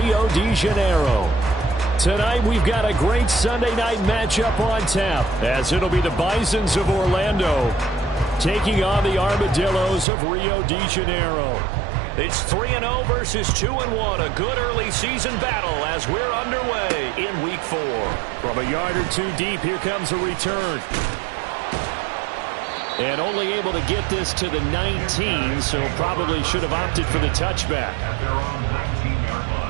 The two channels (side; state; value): left; drops out; at 10.1 s